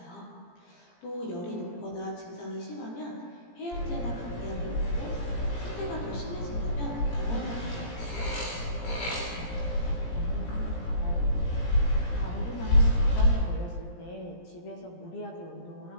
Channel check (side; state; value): right; late; 17 ms